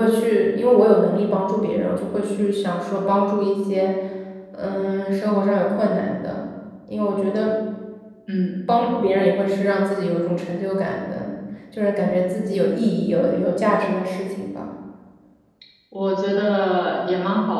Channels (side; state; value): both; identical; correlation 1.00